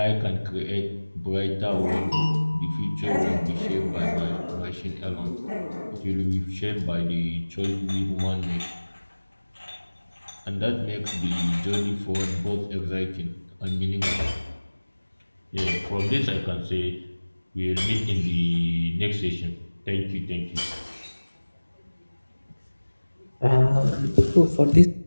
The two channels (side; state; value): both; inverted; correlation -1.00